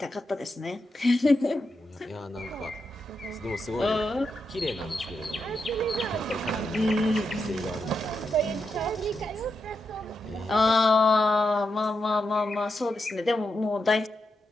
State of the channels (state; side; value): normal; both; correlation 0.85